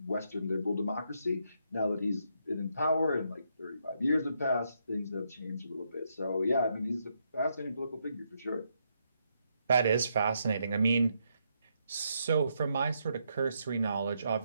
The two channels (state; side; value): inverted; both; correlation -0.78